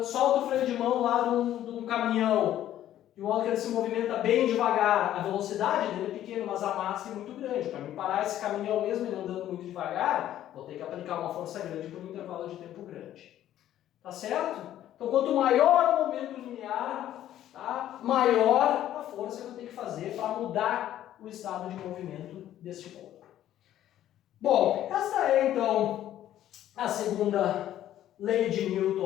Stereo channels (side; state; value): right; quieter; 12.2 dB